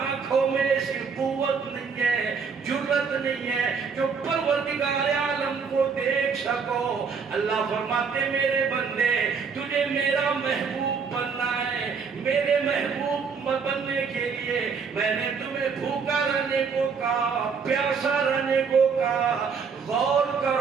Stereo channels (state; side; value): quieter; left; 5.7 dB